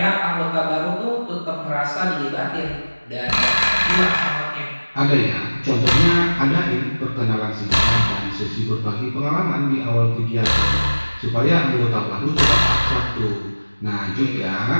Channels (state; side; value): inverted; both; correlation -1.00